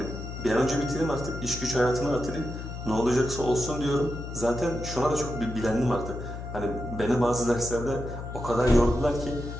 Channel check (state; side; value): noise; left; hum, 8 dB below the sound